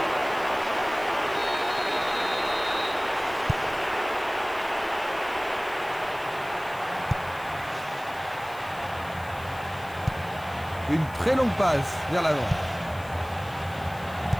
Une très longue passe vers l'avant.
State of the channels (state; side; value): noise; left; hiss, 22 dB below the sound